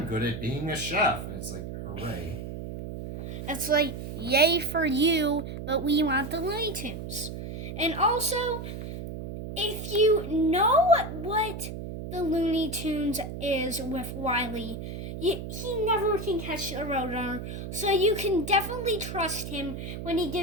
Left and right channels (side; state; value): right; noise; hum, 8 dB below the sound